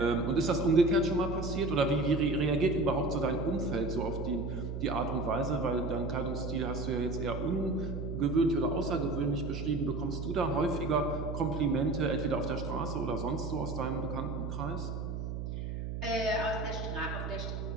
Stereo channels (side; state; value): right; noise; hum, 5 dB below the sound